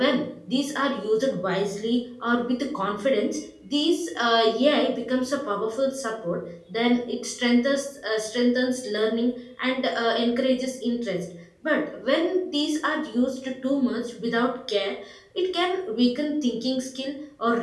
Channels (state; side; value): identical; both; correlation 1.00